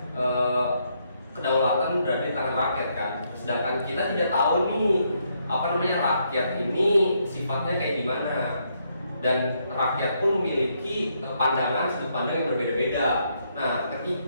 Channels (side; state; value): both; inverted; correlation -0.75